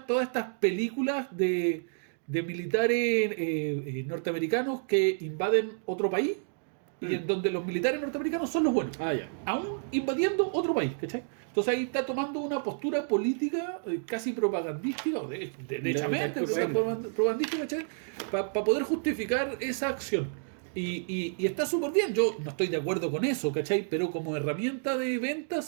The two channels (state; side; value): silent; left; digital silence